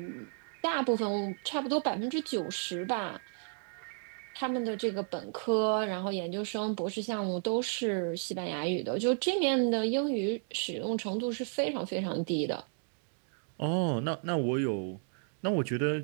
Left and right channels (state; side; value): silent; left; 56 dB below the other